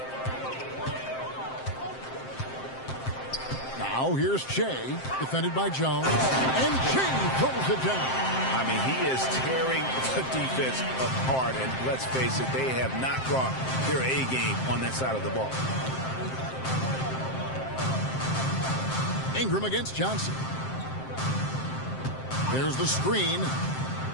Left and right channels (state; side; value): late; right; 7.6 ms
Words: Now here's Shea, defended by Jones, and Shea throws it down. I mean, he is tearing the defense apart, and let's face it, they have not brought their A game on that side of the ball. Ingram against Johnson. There's the screen.